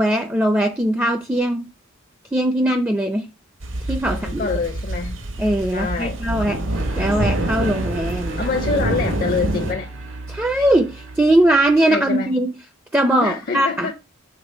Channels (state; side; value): normal; both; correlation 0.72